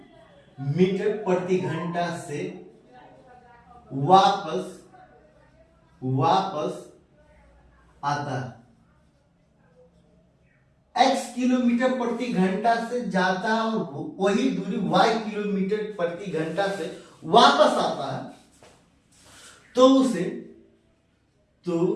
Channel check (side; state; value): both; identical; correlation 1.00